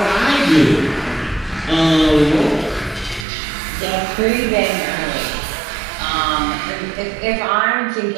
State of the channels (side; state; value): left; drops out; at 3.2 s